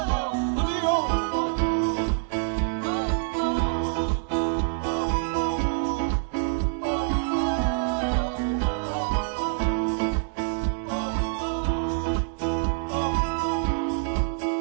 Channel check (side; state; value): left; silent; digital silence